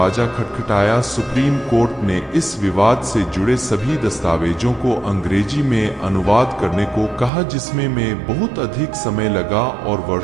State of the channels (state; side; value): drops out; left; at 7.3 s